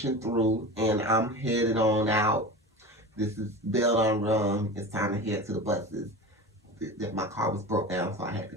through and I'm headed on out. This is bell on run. It's time to head to the buses. My car was broke down, so I had to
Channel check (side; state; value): both; normal; correlation 0.31